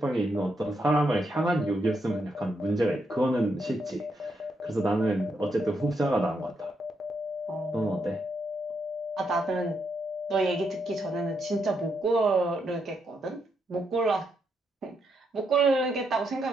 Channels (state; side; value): normal; both; correlation 0.80